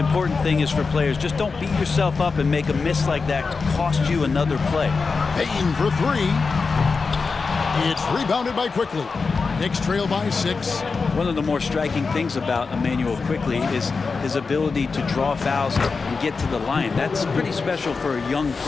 thing is for players, just don't beat yourself up and make a miss like that cost you another play. Payton for 3. It's rebounded by Quickly. Knicks trail by 6. One of the more striking things about Emmanuel Quickly is his ability to draw fouls and get to the line. That's pretty special for a young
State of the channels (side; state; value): right; quieter; 4.6 dB